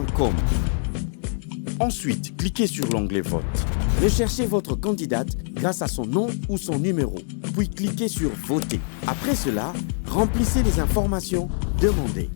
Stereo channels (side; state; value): right; silent; digital silence